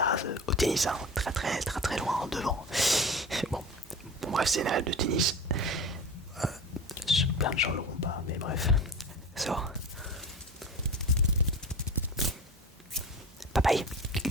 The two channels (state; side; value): normal; both; correlation 0.32